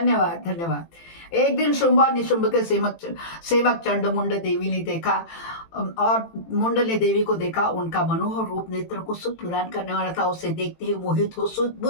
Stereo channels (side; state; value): right; late; 18 ms